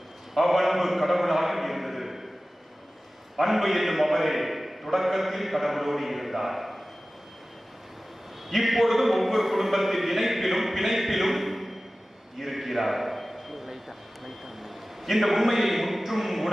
அவ்வன்பு கடவுளாக இருந்தது. அன்பு என்னும் அவரே தொடக்கத்தில் கடவுளோடு இருந்தார். இப்பொழுது ஒவ்வொரு குடும்பத்தின் இணைப்பிலும் பிணைப்பிலும் இருக்கிறார். இந்த உண்மையை முற்றும்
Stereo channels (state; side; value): normal; both; correlation 0.96